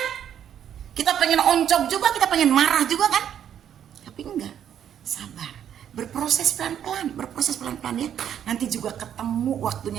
Kita pengen oncok juga, kita pengen marah juga kan? Tapi enggak, sabar. Berproses pelan-pelan ya. Nanti juga ketemu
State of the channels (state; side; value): quieter; left; 9.6 dB